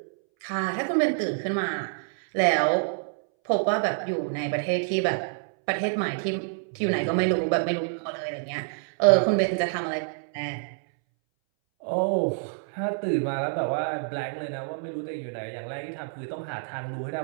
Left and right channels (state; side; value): silent; left; 60 dB below the other